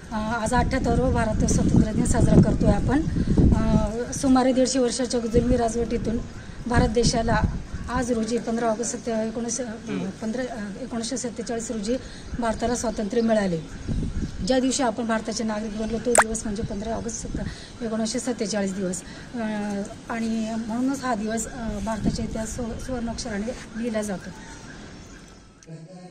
आज 78वा भारत स्वातंत्र्य दिन साजरा करतोय आपण। सुमारे 150 वर्षाच्या जुलमी राजवटीतून भारत देशाला आज रोजी 15 ऑगस्ट 1947 रोजी भारताला स्वातंत्र्य मिळाले। ज्या दिवशी आपण भारताचे नागरिक बनलो तो दिवस म्हणजे 15 ऑगस्ट 1947 दिवस आणि म्हणूनच हा दिवस भारताच्या इतिहास सुवर्णाक्षराने लिहिला जातो।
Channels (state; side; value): identical; both; correlation 1.00